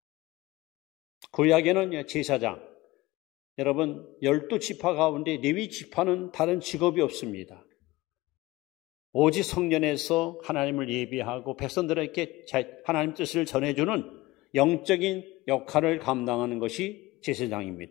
구약에는 제사장, 여러분 12지파 가운데 레위 지파는 다른 직업이 없습니다. 오직 성전에서 하나님을 예비하고 백성들에게 하나님 뜻을 전해주는 영적인 역할을 감당하는 것이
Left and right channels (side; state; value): right; quieter; 19.4 dB